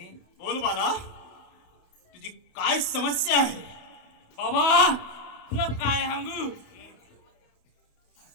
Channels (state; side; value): late; right; 28 ms